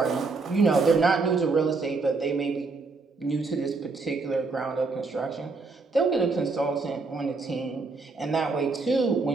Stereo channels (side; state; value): left; quieter; 4.0 dB